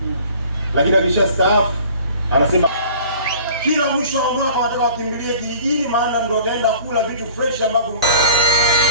lakini akishastaafu anasema kila mwisho wa mwaka wanataka wakimbilie kijijini, maana ndio wataenda kula vitu fresh ambavyo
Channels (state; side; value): inverted; both; correlation -0.47